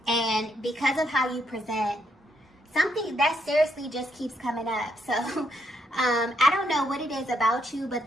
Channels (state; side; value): normal; both; correlation 0.76